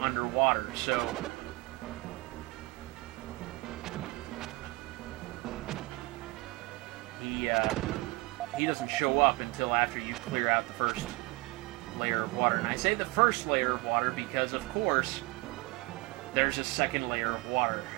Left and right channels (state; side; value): quieter; left; 23.7 dB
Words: so he doesn't show up until after you clear out the first layer of water. And I say the first layer of water because, of course, there's a second layer of water.